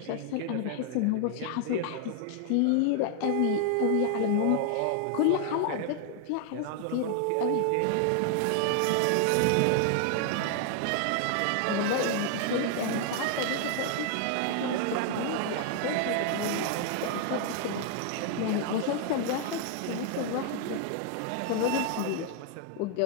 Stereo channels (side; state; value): both; different; correlation 0.00